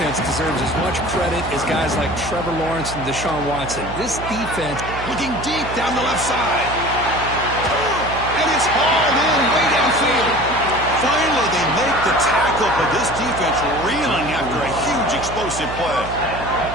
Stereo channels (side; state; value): right; noise; hum, 10 dB below the sound